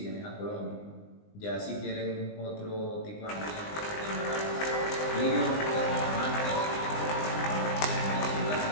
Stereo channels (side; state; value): right; late; 20 ms